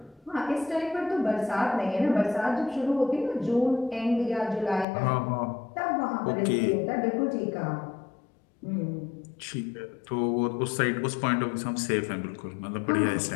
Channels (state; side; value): drops out; right; at 4.9 s